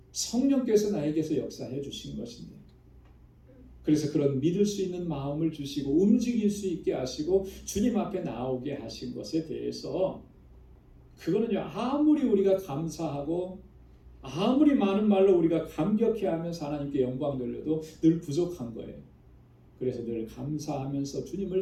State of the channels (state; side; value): identical; both; correlation 1.00